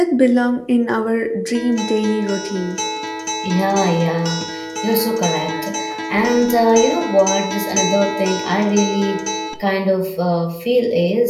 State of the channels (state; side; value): identical; both; correlation 1.00